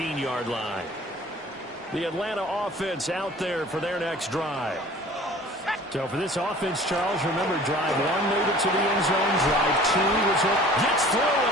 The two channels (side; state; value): both; normal; correlation 0.47